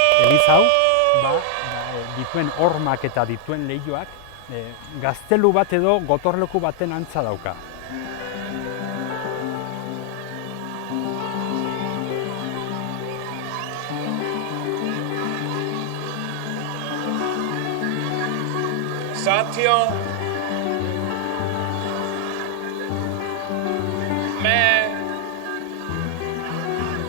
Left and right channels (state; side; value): different; both; correlation 0.00